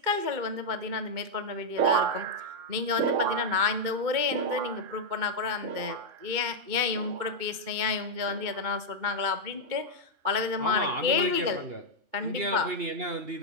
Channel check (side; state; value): left; late; 2.2 ms